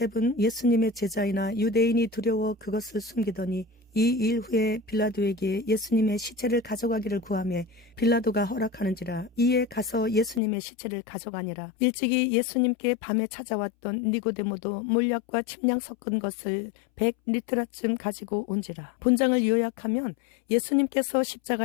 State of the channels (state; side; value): drops out; right; at 10.4 s